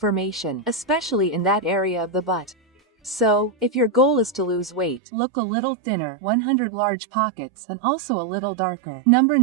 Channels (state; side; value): drops out; left; at 5.0 s